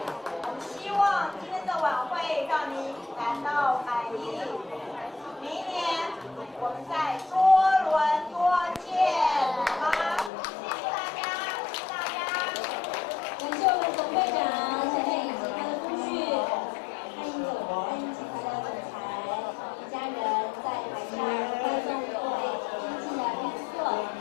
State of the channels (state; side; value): drops out; right; at 10.3 s